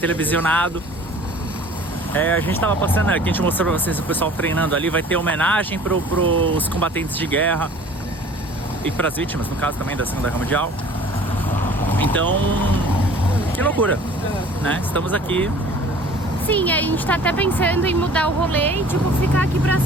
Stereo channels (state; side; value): normal; both; correlation 0.48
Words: A gente tava passando aqui, a gente mostrou pra vocês o pessoal treinando ali. Vai ter homenagem pros combatentes de guerra e pras vítimas, no caso também da Segunda Guerra Mundial. Então, que loucura, né? Estamos aqui. Sim, a gente tá até pensando em mudar o rolê e tipo, ficar aqui pra